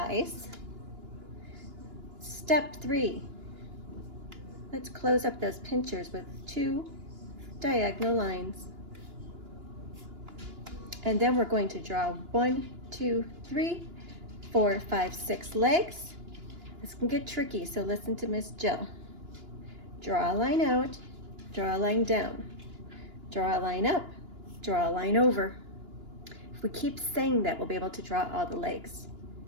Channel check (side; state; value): left; late; 2.9 ms